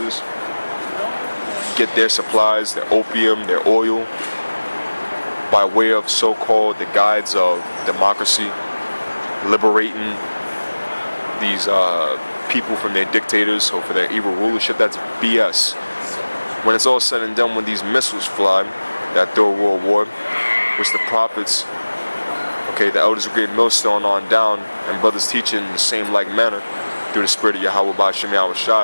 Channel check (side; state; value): both; inverted; correlation -1.00